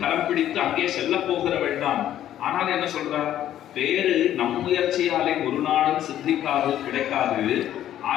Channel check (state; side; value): quieter; right; 11.8 dB